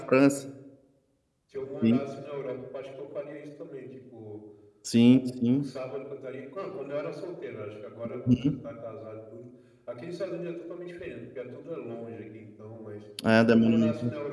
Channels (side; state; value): both; identical; correlation 1.00